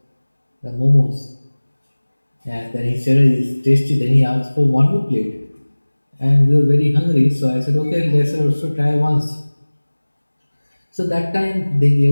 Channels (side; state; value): both; inverted; correlation -1.00